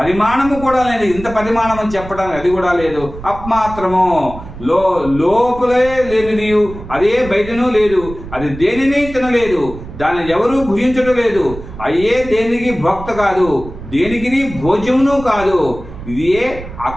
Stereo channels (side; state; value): right; noise; rumble, 13 dB below the sound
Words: కూడా లేదు, ఇంత పరిమాణం అని చెప్పడానికి అది కూడా లేదు, అప్మాత్రము లోపలే లేనిది, అదే బయటనూ లేదు, అది దేనిని తినలేదు, దాన్ని ఎవరూ భుజించడం లేదు, అయ్యే దేనికి భోక్త కాదు, దేనికి భోజ్యమును కాదు, ఇదే